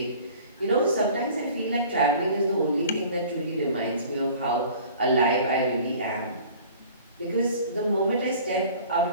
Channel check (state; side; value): inverted; both; correlation -0.47